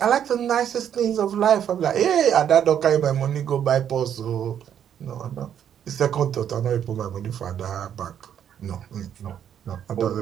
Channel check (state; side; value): quieter; left; 9.3 dB